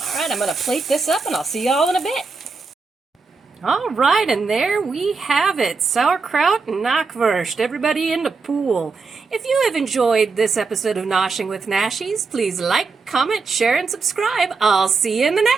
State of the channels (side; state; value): left; quieter; 4.5 dB